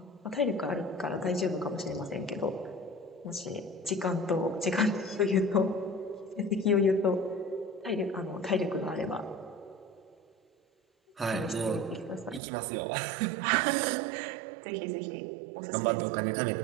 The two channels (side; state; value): left; drops out; at 12.4 s